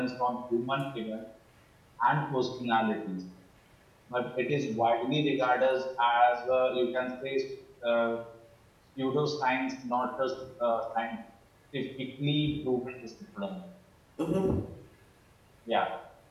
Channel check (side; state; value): both; identical; correlation 1.00